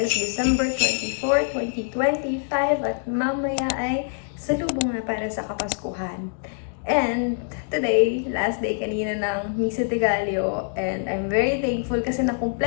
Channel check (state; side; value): silent; right; digital silence